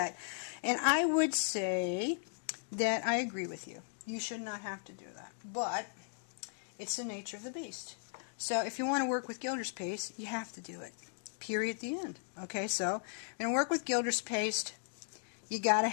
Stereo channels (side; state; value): right; silent; digital silence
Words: And I would say that I agree with you. You should not have to do that. But it's the nature of the beast. So if you want to work with Gilders Paste, you have to do it. Period at the end. Okay, so you're going to work with Gilders Paste. You got to